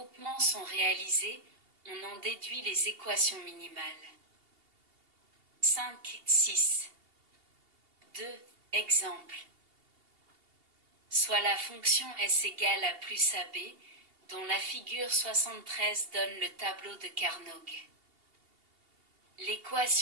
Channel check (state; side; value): late; left; 2.8 ms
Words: sont réalisés, on en déduit les équations minimales. 5, 6. 2. Exemple. Soit la fonction S égale à plus AB, dont la figure 73 donne le tableau de Carnot.